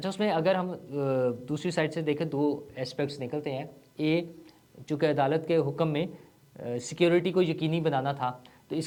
اس میں اگر ہم دوسری سائڈ سے دیکھیں, دو ایسپیکٹس نکلتے ہیں. چونکہ عدالت کے حکم میں سیکیورٹی کو یقینی بنانا تھا, تو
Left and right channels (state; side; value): identical; both; correlation 1.00